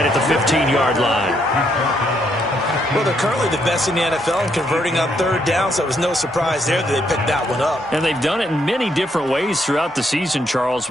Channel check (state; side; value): normal; both; correlation 0.74